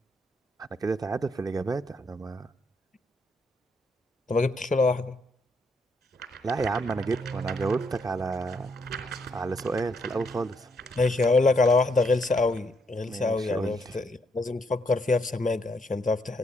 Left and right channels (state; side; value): normal; both; correlation 0.74